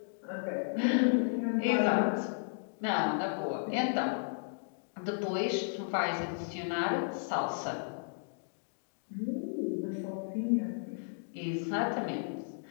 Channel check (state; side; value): silent; right; digital silence